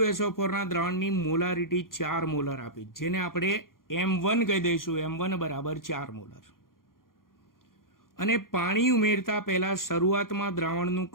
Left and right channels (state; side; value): late; right; 0.91 ms